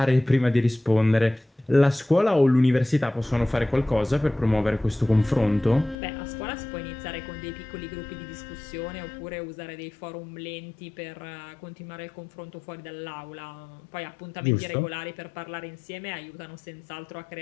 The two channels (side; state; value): right; drops out; at 6.0 s